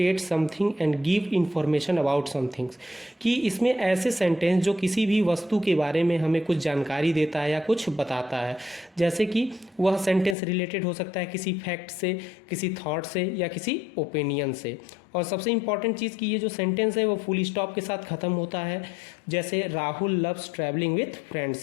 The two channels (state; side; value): drops out; right; at 10.4 s